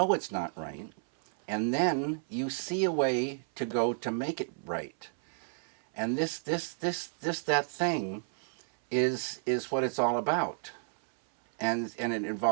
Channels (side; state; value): left; silent; 57 dB below the other